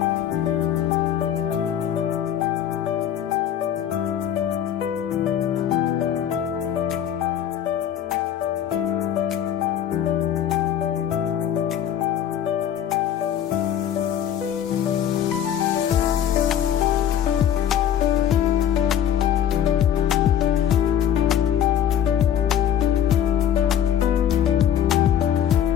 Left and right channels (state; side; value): quieter; right; 9.8 dB